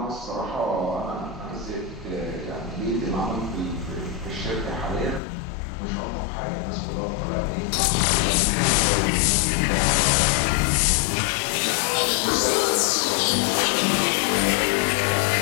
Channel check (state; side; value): drops out; right; at 5.2 s